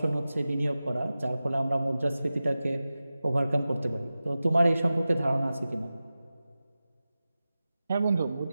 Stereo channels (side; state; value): both; inverted; correlation -0.95